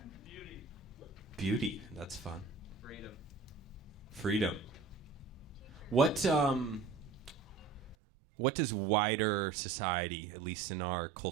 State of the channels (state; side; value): drops out; left; at 8.0 s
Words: Beauty. That's fun. Freedom. What does wider society, at least in our